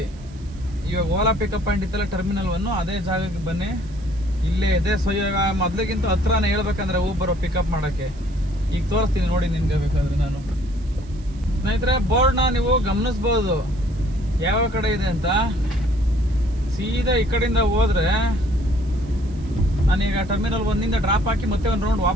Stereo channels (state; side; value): noise; right; hiss, 27 dB below the sound